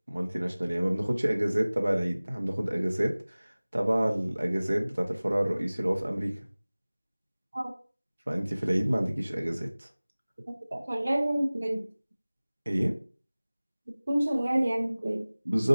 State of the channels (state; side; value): inverted; both; correlation -0.99